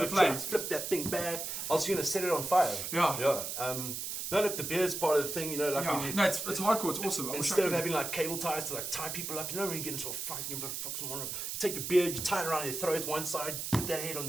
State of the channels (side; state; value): right; noise; hiss, 4 dB below the sound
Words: flames? Flip that thing back. I was going to set it on fire. Yeah. Yeah. No, look, the beard's part of the thing, you know, like when you... No, it's hardcore, it's awesome. Instead of having like cable ties to like tie people up, you know, when you get into a fight, you fuck someone up, you take your beard, you tie it around their throat one side, put their head on